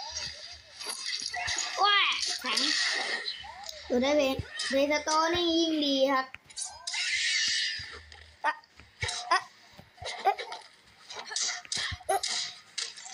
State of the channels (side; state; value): both; identical; correlation 1.00